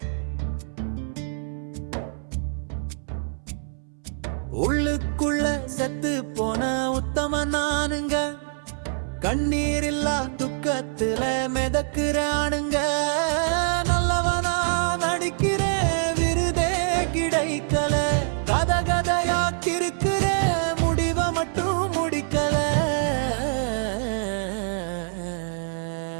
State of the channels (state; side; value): silent; left; 62 dB below the other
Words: உள்ளுக்குள்ள செத்து போன உத்தம நானுங்க கண்ணீர் இல்லா துக்கத்துல மிதக்குறானுங்க நல்லவனா நடிக்கிற விருதே கிடைக்கல கத கதையாக்கிருக்கிற முடிவ மட்டும் முடிக்கல